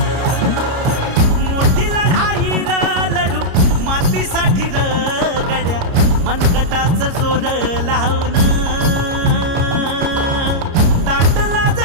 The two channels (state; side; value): late; left; 29 ms